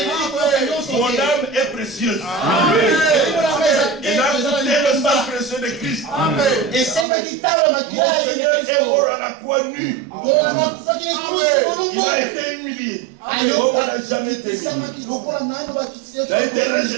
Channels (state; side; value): drops out; left; at 7.1 s